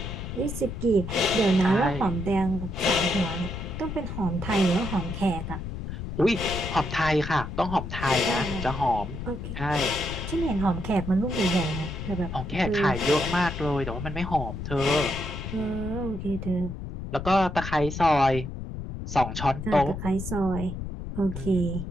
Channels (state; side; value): noise; left; rumble, 7 dB below the sound